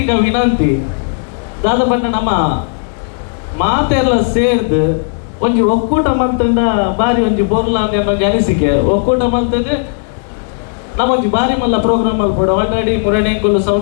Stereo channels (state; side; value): silent; right; 71 dB below the other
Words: ವಿನಂತಿ ದಾದಪಟ್ಟ ನಮ್ಮ ಮಾತೆಲ್ಲ ಸೇರ್ದು ಒಂಜಿ ಒಕ್ಕೂಟ ಮಲ್ತಂಡ ಬಾರಿ ಒಂಜಿ ಬೋರ್ಲ ಅನ್ನೊಂದು ಅನಿಸಿಕೆ ಒಕ್ಕೂಟ ಮಲ್ತದೆ ನಮ್ಮೊಂಜಿ ಬಾರಿ ಮಲ್ಲ ಪ್ರೋಗ್ರಾಮ್ ಮಲ್ಪಡ ಆಲ್ರೆಡಿ ಮುರಣೆಂಕುಲು